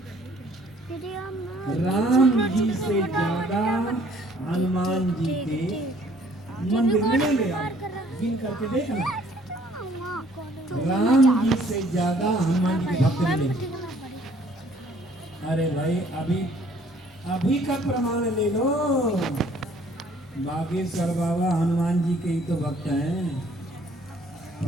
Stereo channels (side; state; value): both; normal; correlation 0.59